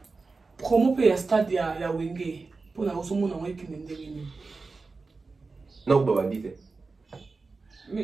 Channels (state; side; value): quieter; left; 4.0 dB